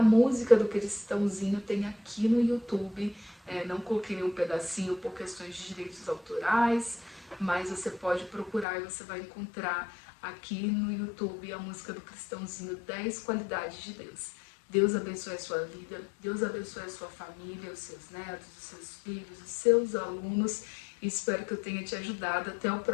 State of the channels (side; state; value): right; drops out; at 8.7 s